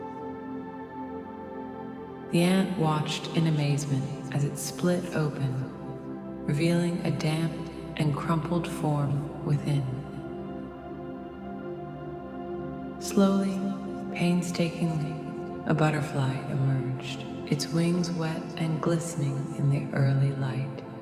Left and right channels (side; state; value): both; identical; correlation 1.00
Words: The ant watched in amazement as it split open, revealing a damp and crumpled form within. Slowly, painstakingly, a butterfly emerged, its wings wet and glistening in the early light.